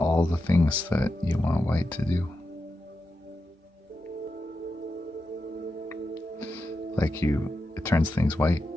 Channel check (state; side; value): normal; both; correlation 0.89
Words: the things that you want white to do. Like it turns things white